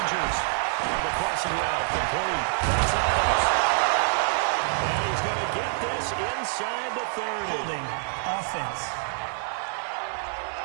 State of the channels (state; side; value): silent; left; digital silence